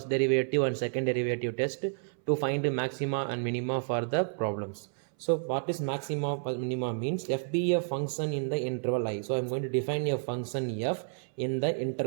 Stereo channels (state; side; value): silent; left; 57 dB below the other